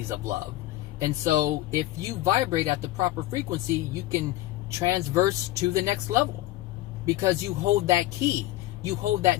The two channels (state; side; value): quieter; right; 16.3 dB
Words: of love. And so if you vibrate at the proper frequency, you can transverse to the next level because you hold that key, you hold that